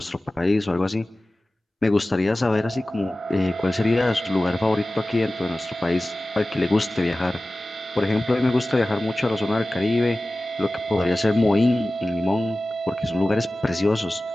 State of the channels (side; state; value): both; normal; correlation 0.96